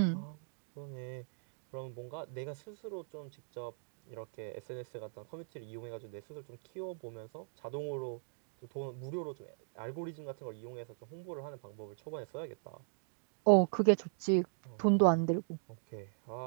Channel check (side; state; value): left; silent; digital silence